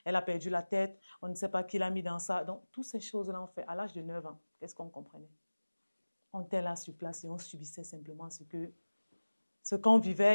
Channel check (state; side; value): inverted; both; correlation -1.00